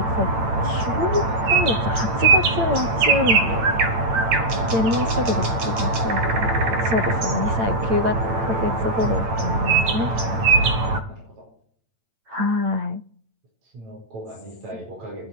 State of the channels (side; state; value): left; late; 8.9 ms